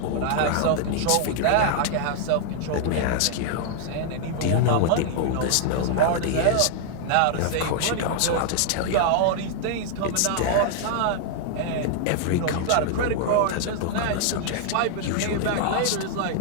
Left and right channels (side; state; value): both; different; correlation -0.01